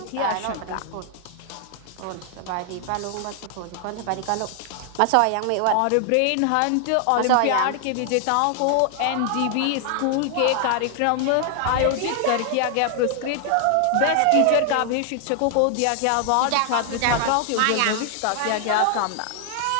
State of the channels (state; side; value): different; both; correlation 0.00